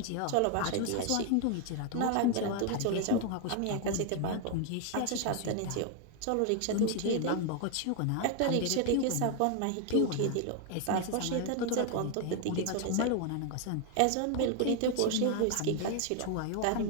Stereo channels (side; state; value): both; different; correlation 0.00